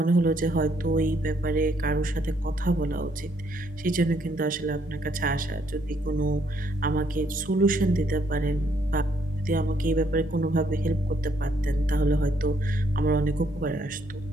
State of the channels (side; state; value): both; normal; correlation 0.70